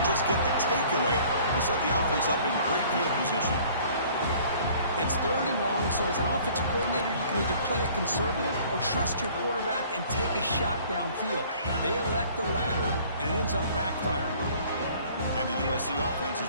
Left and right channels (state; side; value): inverted; both; correlation -0.53